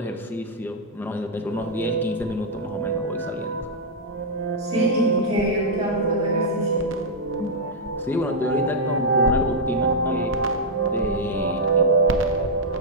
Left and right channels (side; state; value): both; normal; correlation -0.05